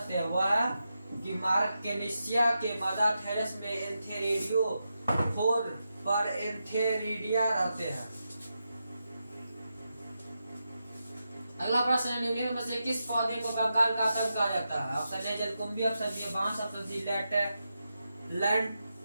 है? वह है कि मार्कनेसिया के मदर थैलस में एंथेरिडियो फोर पर एंथेरिडिया रहते हैं। अगला प्रश्न है निम्नलिखित में से किस पौधे को कंकाल का आतंक कहा जाता है? ऑप्शन ए जलकुंभी, ऑप्शन बी बांस, ऑप्शन सी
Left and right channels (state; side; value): inverted; both; correlation -0.87